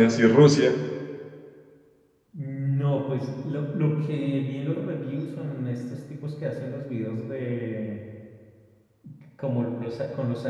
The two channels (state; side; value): identical; both; correlation 1.00